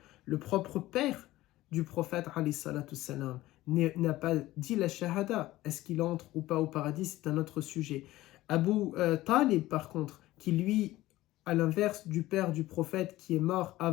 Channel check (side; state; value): right; quieter; 16.8 dB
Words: Le propre père du prophète alayhi salatu salam n'a pas dit la shahada. Est-ce qu'il entre ou pas au paradis? C'est un autre sujet. Abu Talib par contre, qui lui, à l'inverse du père du prophète qui est mort